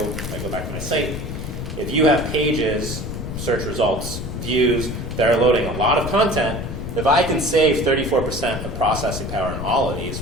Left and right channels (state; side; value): noise; left; rumble, 6 dB below the sound